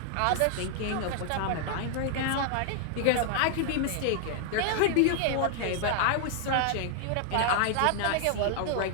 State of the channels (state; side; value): different; both; correlation 0.00